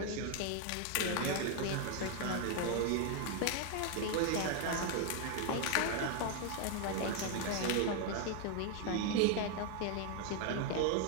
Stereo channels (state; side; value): different; both; correlation 0.01